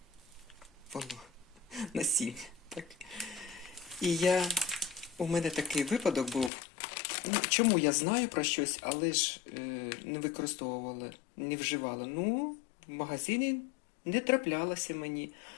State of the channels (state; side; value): drops out; right; at 6.5 s